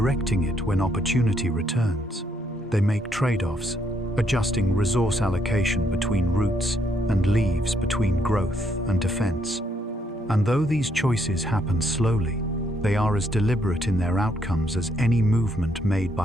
it when opportunity returns. They make trade-offs, adjusting resource allocation between roots and leaves, between growth and defense. And though these choices happen slowly, they are as deliberate in their outcomes as any movement made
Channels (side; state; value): both; normal; correlation 0.73